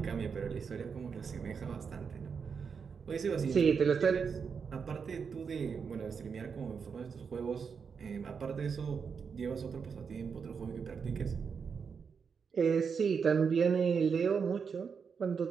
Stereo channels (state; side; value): quieter; left; 6.1 dB